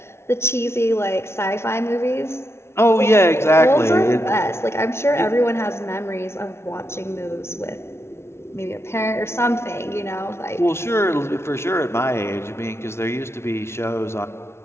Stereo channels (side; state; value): right; late; 0.12 ms